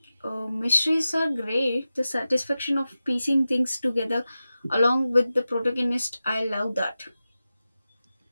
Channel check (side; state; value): both; inverted; correlation -0.93